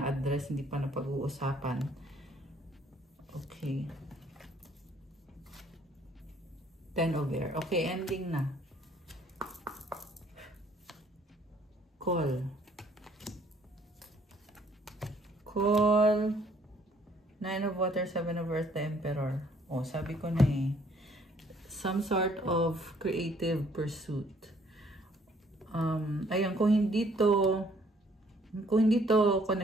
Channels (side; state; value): both; normal; correlation 0.62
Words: hindi pa na-pag-uusapan. Okay. Ten of Air. Okay, ending na. Call. Nine of Water, Seven of Earth, the Emperor. Oh, sabi ko na some sort of creative pursuit. Ayun, kung hindi to